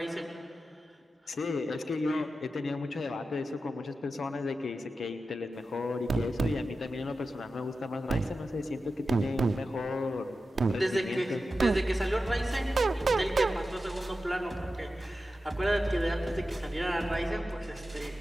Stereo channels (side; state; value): both; normal; correlation 0.92